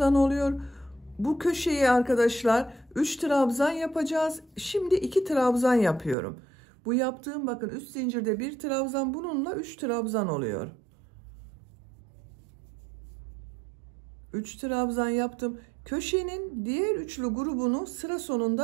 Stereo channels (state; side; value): drops out; left; at 6.2 s